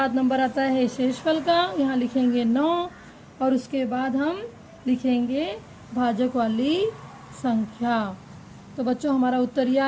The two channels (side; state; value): both; identical; correlation 1.00